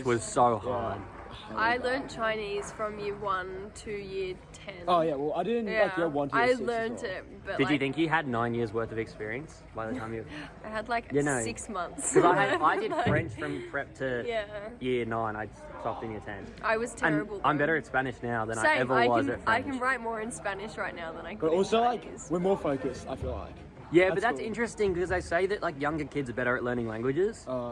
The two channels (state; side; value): identical; both; correlation 1.00